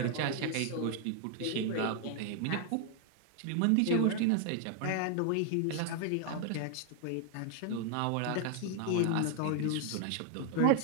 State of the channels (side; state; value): both; different; correlation 0.00